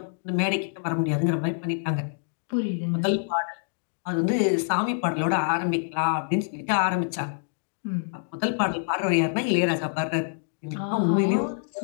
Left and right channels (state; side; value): silent; right; digital silence